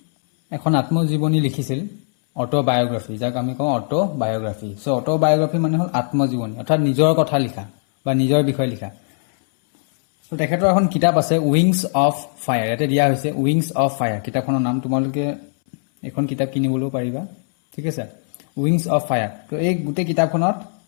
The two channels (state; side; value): silent; right; 66 dB below the other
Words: এখন আত্মজীৱনী লিখিছিল, অটোবায়োগ্ৰাফি, যাক আমি কওঁ অটোবায়োগ্ৰাফি। অটোবায়োগ্ৰাফি মানে হ'ল আত্মজীৱনী, অৰ্থাৎ নিজৰ কথা লিখা বা নিজৰ বিষয়ে লিখা। তো তেখেতৰ এখন কিতাপ আছে, উইংছ অফ ফায়াৰ। ইয়াতে দিয়া হৈছে উইংছ অফ ফায়াৰ কিতাপখনৰ নাম। তোমালোকে এখন কিতাপ কিনিবলৈও পাৰিবা, ঠিক আছে। Wings of fire. তো এই গোটেই কিতাপখনত